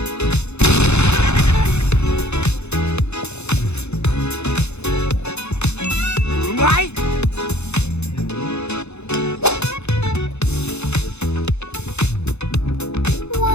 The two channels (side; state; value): right; late; 0.81 ms